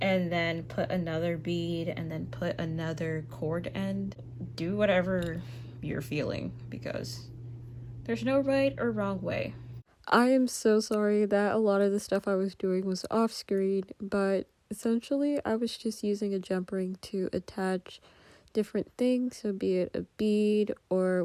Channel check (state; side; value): identical; both; correlation 1.00